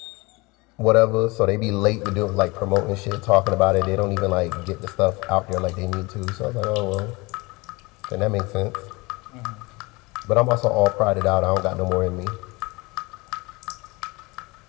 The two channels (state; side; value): quieter; right; 24.5 dB